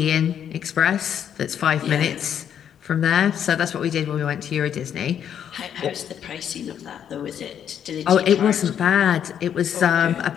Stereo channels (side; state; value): right; quieter; 9.1 dB